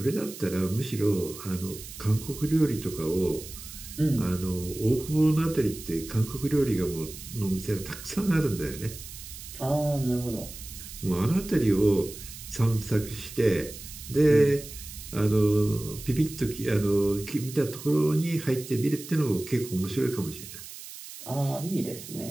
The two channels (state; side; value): noise; right; hiss, 13 dB below the sound